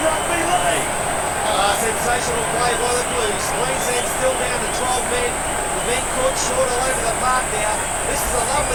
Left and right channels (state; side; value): identical; both; correlation 1.00